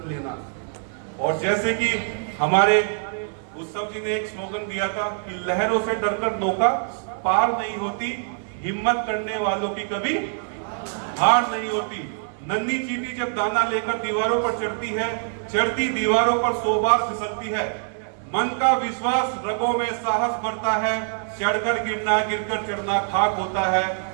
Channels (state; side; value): silent; left; digital silence